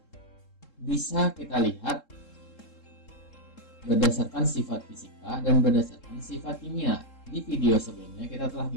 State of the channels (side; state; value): right; late; 3.7 ms